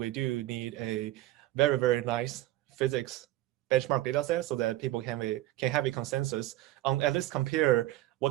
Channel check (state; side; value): quieter; left; 15.9 dB